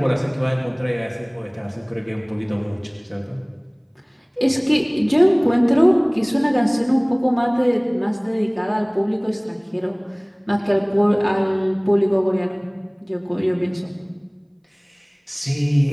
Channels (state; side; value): identical; both; correlation 1.00